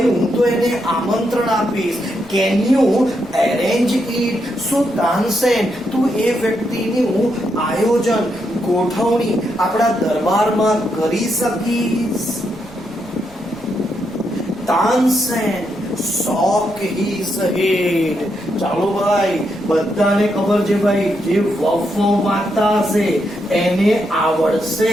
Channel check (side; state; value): left; noise; rumble, 23 dB below the sound